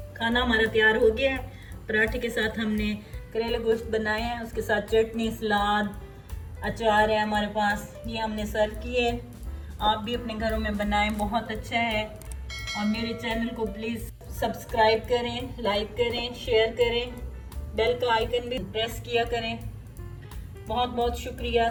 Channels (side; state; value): both; identical; correlation 1.00